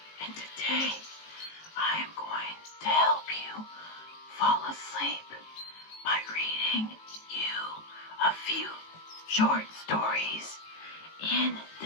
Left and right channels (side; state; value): right; late; 18 ms